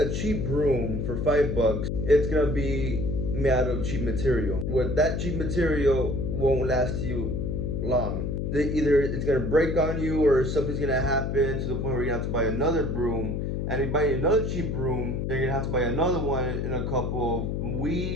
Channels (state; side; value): noise; left; hum, 1 dB below the sound